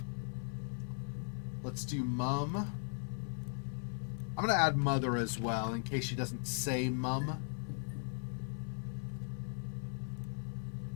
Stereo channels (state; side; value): silent; right; 52 dB below the other